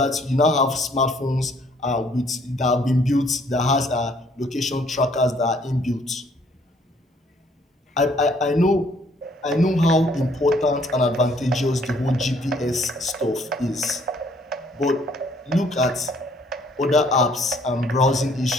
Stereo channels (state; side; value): normal; both; correlation 0.63